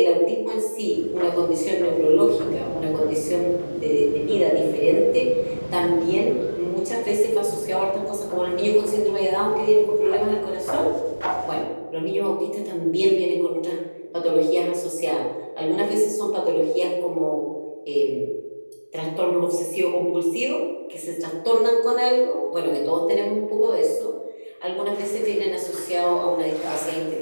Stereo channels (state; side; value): inverted; both; correlation -1.00